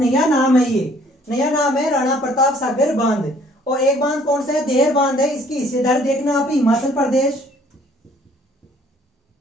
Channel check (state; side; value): normal; both; correlation 0.59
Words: नाम है, ये नया नाम है राणा प्रताप सागर बांध। और एक बांध कौन सा है, देहर बांध है, इसकी हिस्सेदारी देखना आप, हिमाचल प्रदेश,